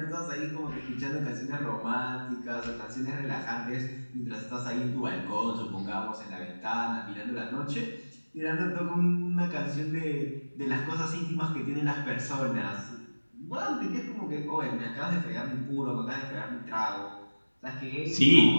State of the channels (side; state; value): both; inverted; correlation -1.00